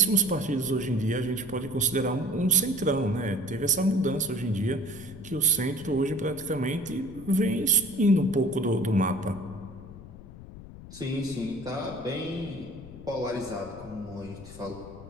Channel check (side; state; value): left; noise; rumble, 16 dB below the sound